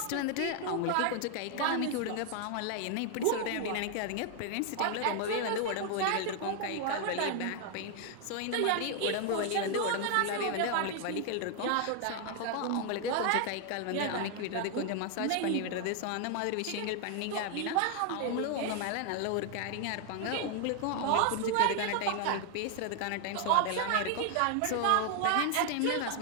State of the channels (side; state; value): both; different; correlation 0.00